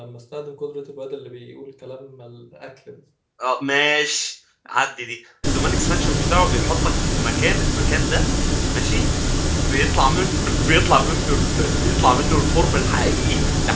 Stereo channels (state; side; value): identical; both; correlation 1.00